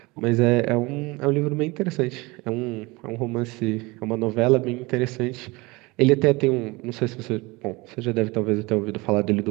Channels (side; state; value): left; quieter; 23.8 dB